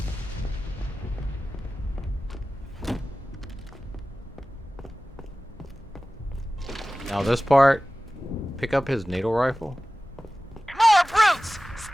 Now this part, pick up his needle rifle. More brutes!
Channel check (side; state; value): both; normal; correlation 0.97